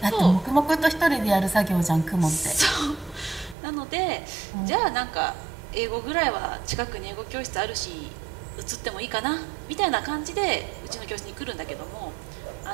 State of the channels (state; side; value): drops out; left; at 3.6 s